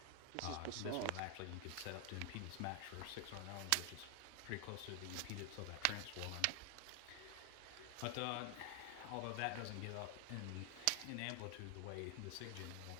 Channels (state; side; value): different; both; correlation 0.00